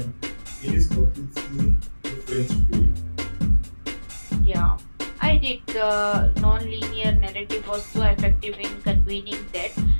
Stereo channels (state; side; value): inverted; both; correlation -1.00